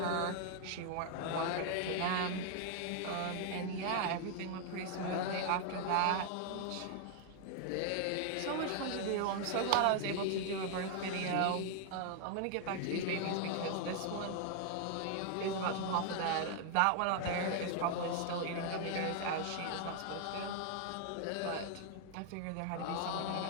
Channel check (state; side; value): different; both; correlation 0.00